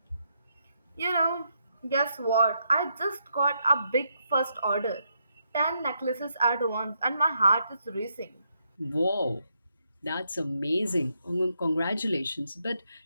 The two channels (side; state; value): both; inverted; correlation -0.79